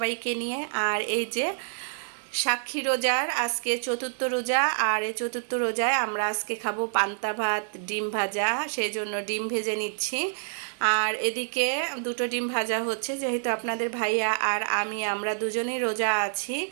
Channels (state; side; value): silent; left; 60 dB below the other